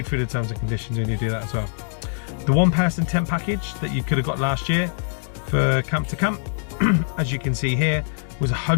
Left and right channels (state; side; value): silent; right; 62 dB below the other